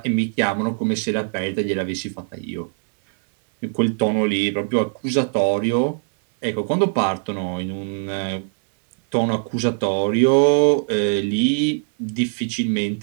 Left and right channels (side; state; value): left; silent; 63 dB below the other